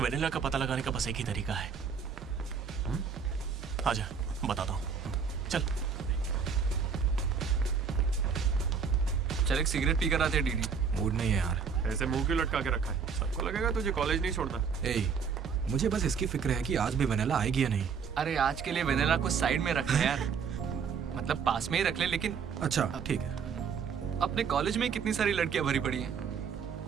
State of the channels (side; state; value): left; quieter; 6.2 dB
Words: वेनिला का पता लगाने का बस एक ही तरीका है। आजा, बताता हूँ। चल। चल एक सिगरेट पी कर आते हैं डीडी। मूड नहीं है यार। ऐसे मुंह क्यों लटका के रखा है? सबको लगेगा तुझे कॉलेज नहीं छोड़ना। मुझे बस इसकी फिक्र है कि आज भी वेनिला आएगी या नहीं। अरे आज के लिए वेनिला को साइड में रख ले यार, मतलब पास में ही रख ले। लेकिन अच्छा ठीक है। अपने कॉलेज में कितनी सारी लड़कियां भरी पड़ी हैं,